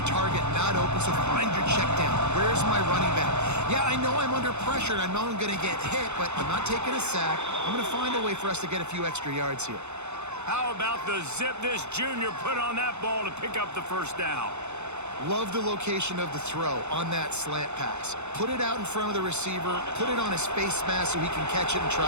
target not open, so find your check down. Where's my running back? Yeah, I know I'm under pressure, and I know I'm going to get hit, but I'm not taking a sack. I'm going to find a way for us to get a few extra yards here. How about the zip this junior put on that ball to pick up the first down? Love the location of the throw on that slant pass. Put it out in front of the receiver, put it on his face mask so he can catch it and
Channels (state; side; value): late; left; 0.82 ms